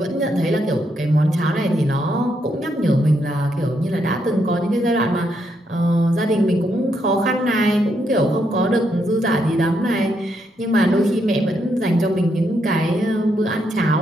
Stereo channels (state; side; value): normal; both; correlation 0.78